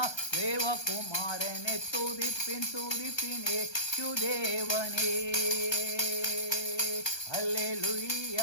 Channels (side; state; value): right; late; 1.2 ms